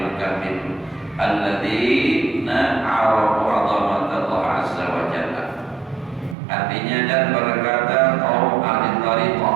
kamil alladzina arafu 'azamatallah azza wa jalla. Artinya dan berkata kaum ahli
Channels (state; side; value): drops out; left; at 6.4 s